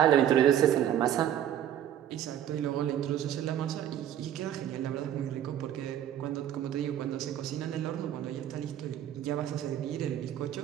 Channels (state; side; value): quieter; left; 10.8 dB